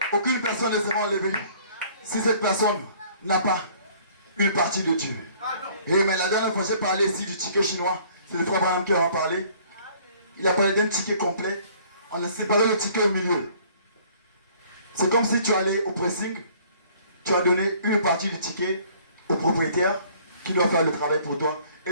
Aucune personne ne sera enlevée si cette personne n'a pas une partie de Dieu. Et mais la dernière fois j'ai parlé ici du ticket chinois. C'est le frère Branham qui en a parlé. Il a parlé d'un ticket complet. On a séparé le ticket au milieu. C'est comme si tu allais au pressing. Tu as donné une partie du ticket au propriétaire qui doit faire le travail pour toi.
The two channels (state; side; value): inverted; both; correlation -0.56